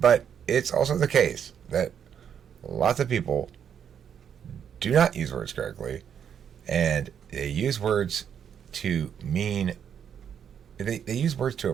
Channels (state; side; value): quieter; left; 8.3 dB